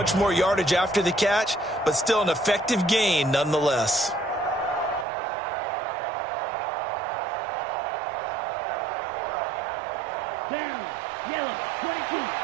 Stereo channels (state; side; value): drops out; left; at 5.1 s